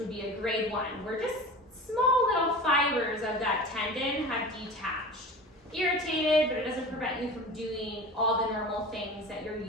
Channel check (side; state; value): both; normal; correlation 0.35